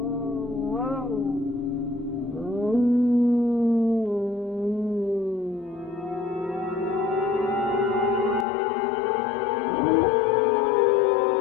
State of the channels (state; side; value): drops out; right; at 8.5 s